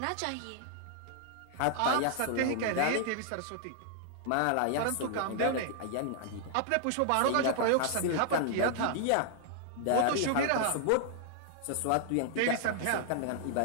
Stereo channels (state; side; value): different; both; correlation -0.01